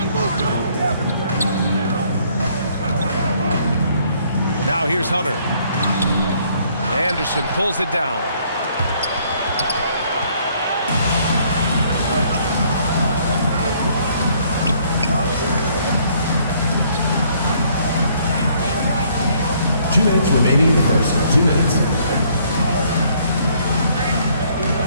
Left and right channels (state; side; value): inverted; both; correlation -0.64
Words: Now here's Hunter. Anderson pulls it down. Minutes remaining in the first. 2 minutes.